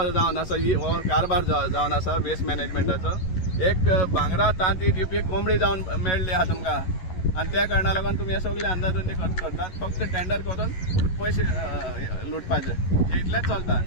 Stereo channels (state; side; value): late; right; 11 ms